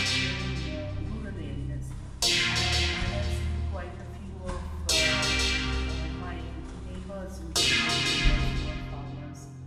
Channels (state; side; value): identical; both; correlation 1.00